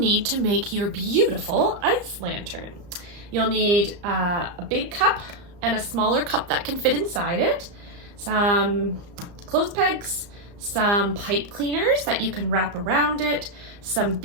to make your beautiful ice lantern. You'll need a big cup and a smaller cup that can fit inside it, some clothes pegs, some pipe cleaners that you can wrap around it, some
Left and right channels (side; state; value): left; late; 34 ms